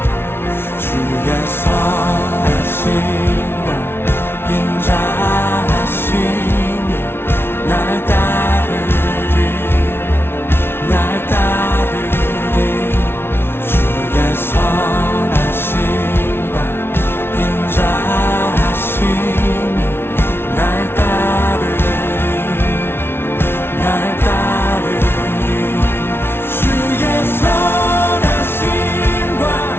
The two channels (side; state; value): right; late; 0.11 ms